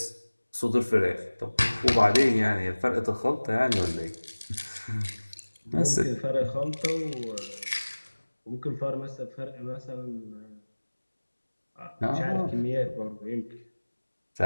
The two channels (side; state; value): both; inverted; correlation -1.00